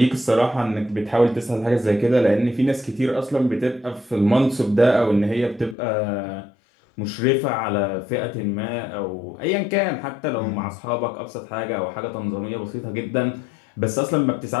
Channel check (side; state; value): right; drops out; at 5.8 s